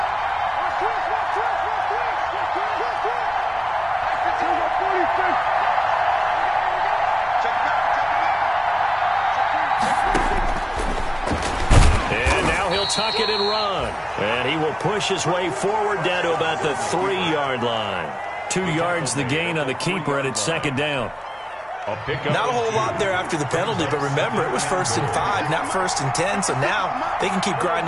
And now he'll tuck it and run. And he will push his way forward down to about the 3-yard line. 2 yards the gain on the keeper, and it's second down. Not a whole lot there after the penalty, but remember, it was 1st and 5, not 1st and 10, so now they can keep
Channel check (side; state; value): both; identical; correlation 1.00